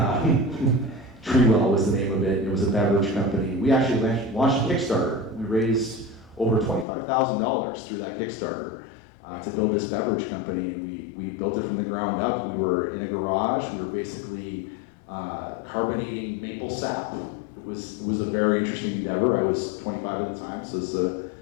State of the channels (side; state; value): right; drops out; at 6.9 s